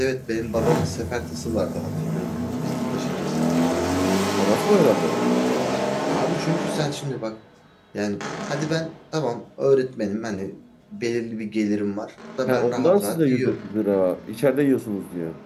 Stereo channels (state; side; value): identical; both; correlation 1.00